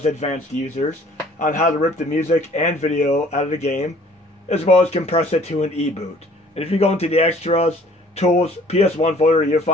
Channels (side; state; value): both; normal; correlation 0.55